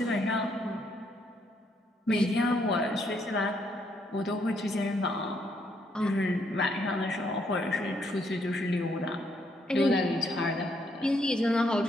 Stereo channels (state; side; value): normal; both; correlation 0.73